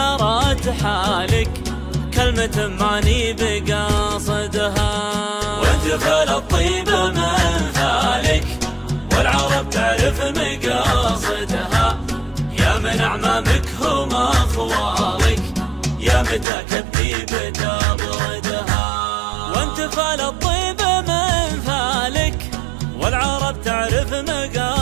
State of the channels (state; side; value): drops out; left; at 16.4 s